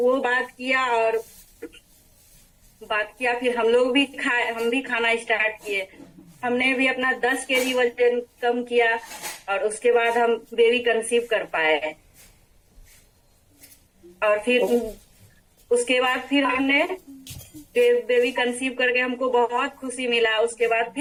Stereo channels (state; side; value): identical; both; correlation 1.00